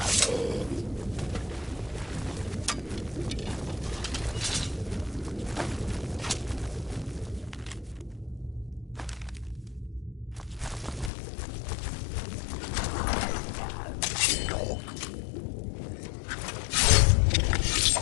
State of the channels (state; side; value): drops out; right; at 11.1 s